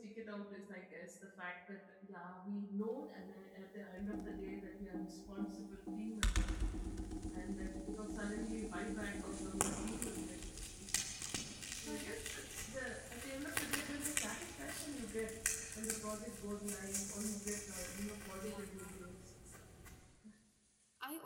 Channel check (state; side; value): identical; both; correlation 1.00